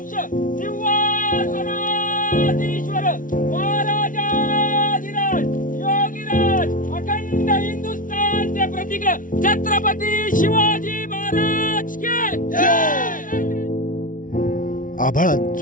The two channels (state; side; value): late; right; 0.38 ms